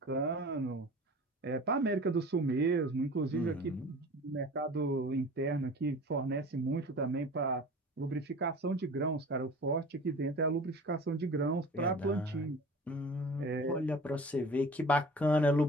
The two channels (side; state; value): both; normal; correlation 0.41